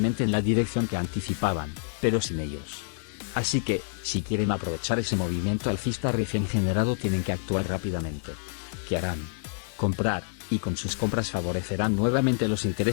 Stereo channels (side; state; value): right; silent; 60 dB below the other